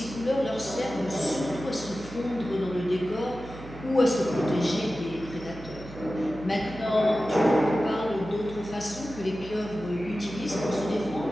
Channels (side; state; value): right; noise; hum, 15 dB below the sound